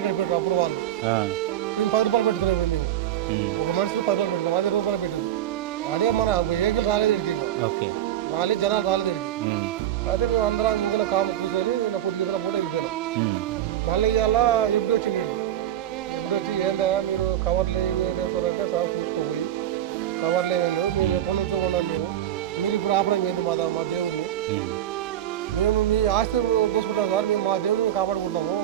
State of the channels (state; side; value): quieter; left; 11.7 dB